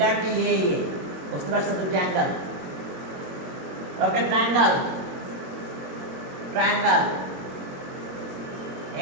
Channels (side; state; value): left; late; 22 ms